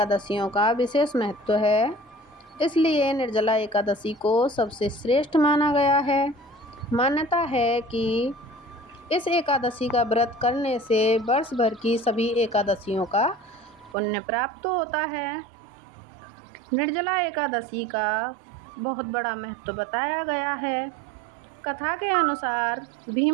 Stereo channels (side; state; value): left; drops out; at 14.0 s